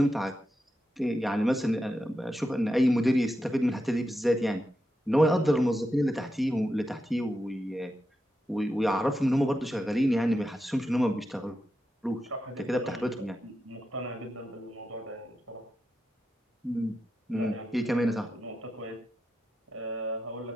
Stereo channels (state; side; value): normal; both; correlation 0.88